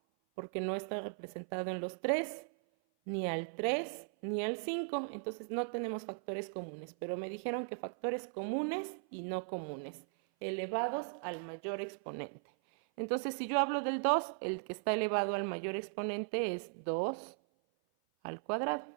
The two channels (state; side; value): silent; left; 52 dB below the other